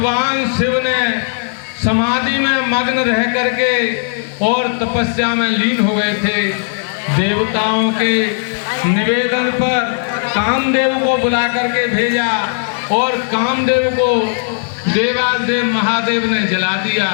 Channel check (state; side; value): silent; right; digital silence